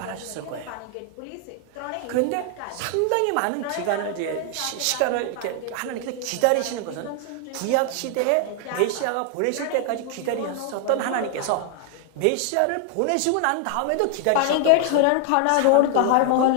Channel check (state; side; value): different; both; correlation 0.00